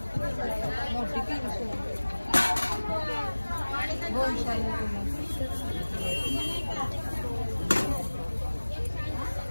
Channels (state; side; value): inverted; both; correlation -1.00